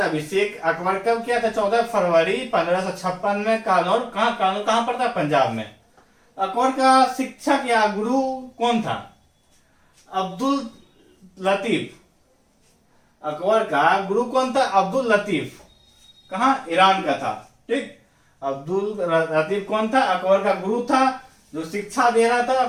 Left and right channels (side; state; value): both; identical; correlation 1.00